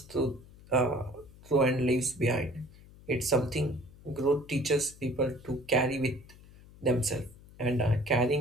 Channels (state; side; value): noise; left; hum, 22 dB below the sound